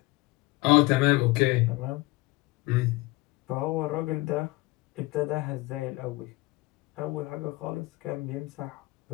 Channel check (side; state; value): right; quieter; 21.4 dB